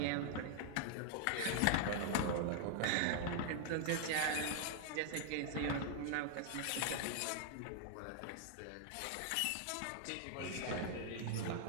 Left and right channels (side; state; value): both; different; correlation 0.00